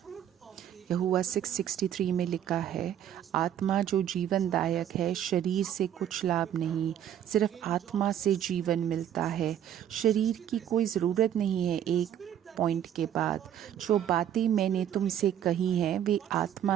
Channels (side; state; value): left; quieter; 10.2 dB